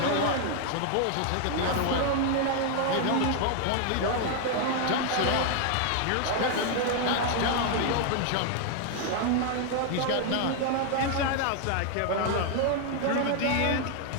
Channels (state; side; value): different; both; correlation 0.00